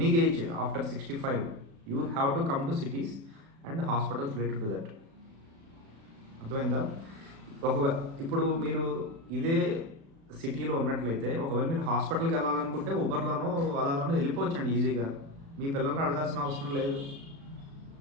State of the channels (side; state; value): left; late; 36 ms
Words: age after 65 you have to come to cities and hospitals related to that. అర్థమైందా? ఇప్పుడు మీరు ఇదే సిటీలో ఉన్నట్లయితే, ఒకవేళ మీరు హాస్పిటల్కి వెళ్ళాలనుకుంటే ఉబర్లోనో అలాలోనో వెళ్ళిపోవచ్చండి ఈజీగా. మీ పిల్లల్ని అడగాల్సిన అవసరం లేదు.